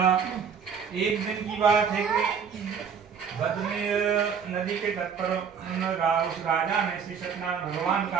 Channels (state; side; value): quieter; left; 6.8 dB